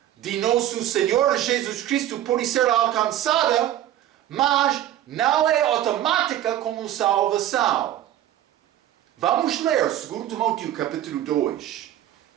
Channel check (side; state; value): left; quieter; 12.5 dB